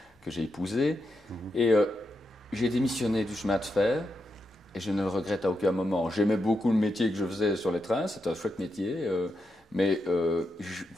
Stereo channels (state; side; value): normal; both; correlation 0.84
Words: que j'ai épousée. Et j'ai démissionné du chemin de fer, et je ne le regrette à aucun moment. J'aimais beaucoup le métier que je faisais sur les trains, c'était un chouette métier. Mais